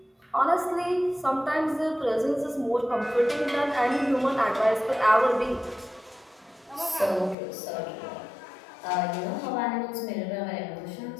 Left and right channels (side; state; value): right; drops out; at 7.4 s